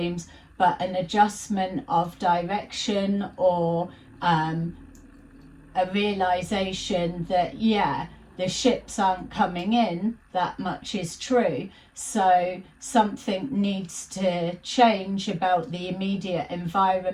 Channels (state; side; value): identical; both; correlation 1.00